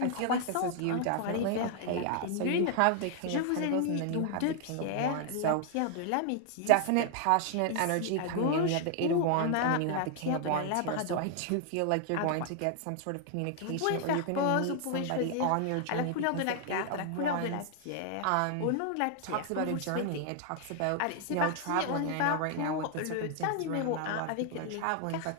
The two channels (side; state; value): both; different; correlation 0.00